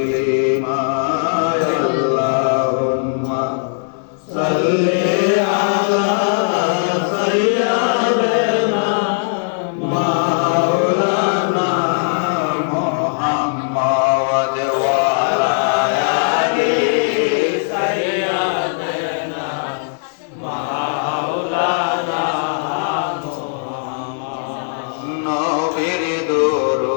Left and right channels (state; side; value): silent; right; digital silence